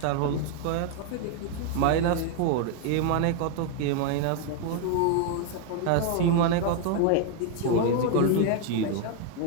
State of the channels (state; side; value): different; both; correlation 0.00